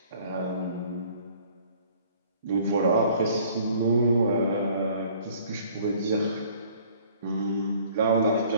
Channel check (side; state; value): both; inverted; correlation -0.55